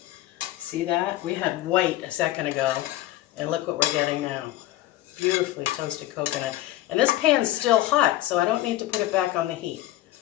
See that? We had white a second ago, and look what we're getting now. Beautifully toasted coconut. And this pan's still hot, so I don't need to put it back on the heat.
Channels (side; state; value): right; quieter; 15.3 dB